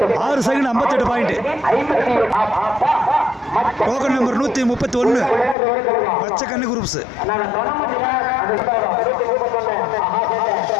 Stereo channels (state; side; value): drops out; right; at 5.6 s